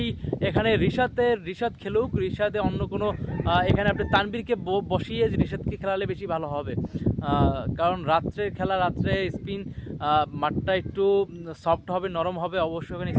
এখানে রিশাদ খেলুক। রিশাদে অন্য কোনো এখানে আপনি তানবীরকে বসিয়ে রিশাদকে খেলালে বেশি ভালো হবে, কারণ রাত্রের খেলা, রাত্রে স্পিন মাঠটা একটু সফট হবে, নরম হবে, অবশ্যই ওখানে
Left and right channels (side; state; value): both; identical; correlation 1.00